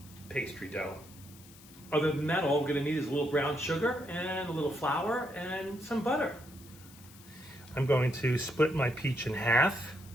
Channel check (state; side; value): noise; left; hiss, 21 dB below the sound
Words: pastry dough. Other than that, all we're gonna need is a little brown sugar and a little flour and some butter. I'm going to split my peach in half